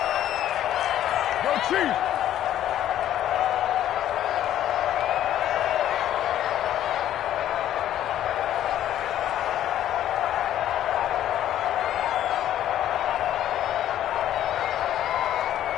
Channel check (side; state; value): right; quieter; 11.8 dB